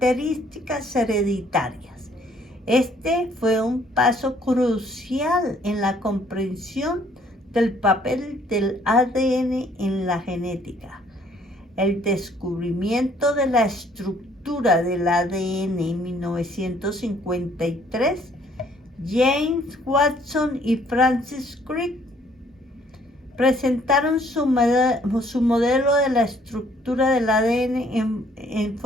hereditarias. Este fue un paso crucial en la comprensión del papel del ADN en la genética. El descubrimiento de la estructura del ADN en 1953, James Watson y Francis Crick presentaron su modelo de la estructura del ADN en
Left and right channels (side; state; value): both; normal; correlation 0.62